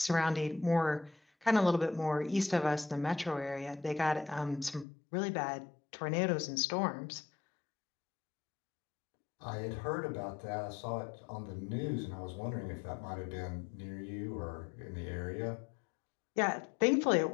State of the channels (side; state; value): right; drops out; at 4.9 s